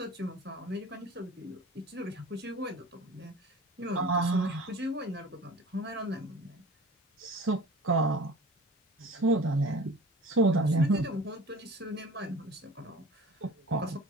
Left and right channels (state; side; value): normal; both; correlation 0.41